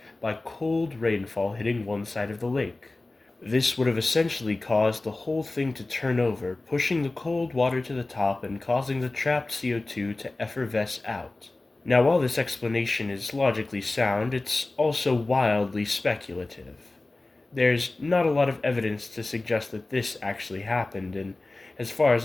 by cold rainfall hitting one side of the lake. This would have essentially caused the whole thing to turn over, pushing the cold water to the top and causing the trapped CO2 to effervesce out. Now, while this explanation is logically sound, it's also wildly speculative. There's not a lot of evidence to suggest that this actually happened, and as far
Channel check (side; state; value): right; quieter; 3.1 dB